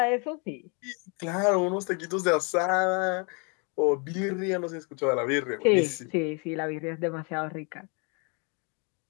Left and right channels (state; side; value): quieter; right; 34.4 dB